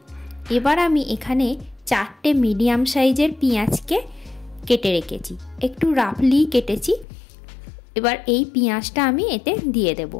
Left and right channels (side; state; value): right; drops out; at 7.1 s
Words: এবার আমি এখানে 4টে মিডিয়াম সাইজের পেঁয়াজকে কেটে রেখেছি, একটু রাফলি কেটেছি। এবার এই পেঁয়াজটা আমি এতে দিয়ে দেব।